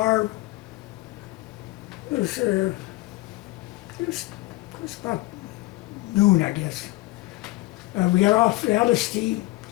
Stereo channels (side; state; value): right; quieter; 19.9 dB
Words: It was about noon, I guess. We got off the LST,